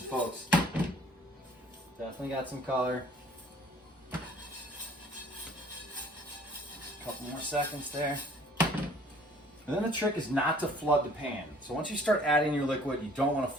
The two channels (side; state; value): both; normal; correlation 0.55